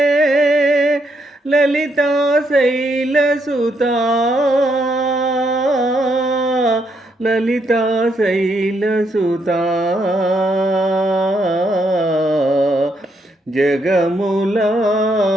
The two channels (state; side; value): normal; both; correlation 0.76